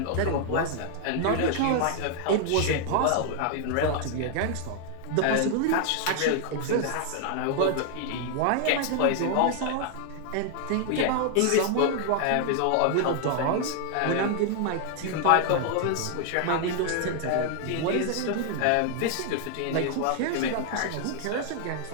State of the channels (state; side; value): different; both; correlation 0.00